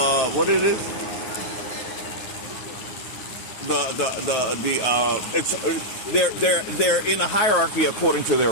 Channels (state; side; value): late; right; 9.4 ms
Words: what it is? They're in a hierarchy according to their